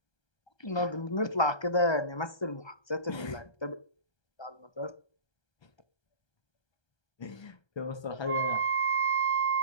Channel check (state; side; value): late; right; 1.3 ms